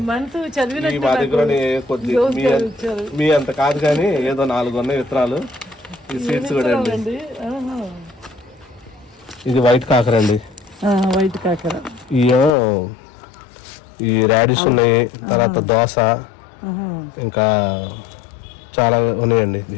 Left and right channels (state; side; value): drops out; right; at 12.6 s